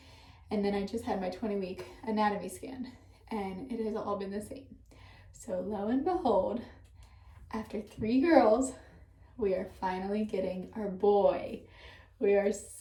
And then I just had my 20-week anatomy scan, and it has all been the same. So lo and behold, after 3 girls, we are finally getting our boy. We are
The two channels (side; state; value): both; identical; correlation 1.00